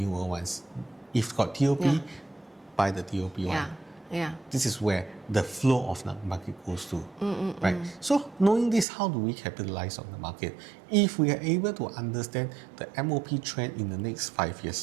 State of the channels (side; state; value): left; drops out; at 8.8 s